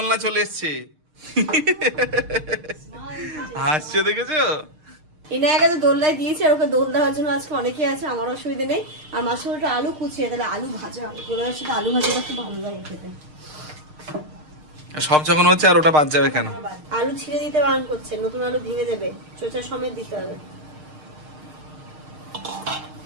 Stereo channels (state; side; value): late; left; 6.5 ms